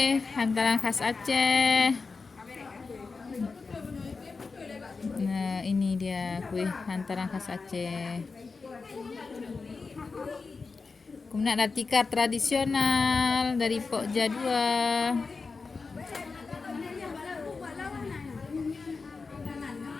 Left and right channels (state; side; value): quieter; right; 4.4 dB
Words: hantaran khas Aceh. Nah, ini dia kue hantaran khas Aceh. Kemudian ada tikar tradisional dari Pok Jadua.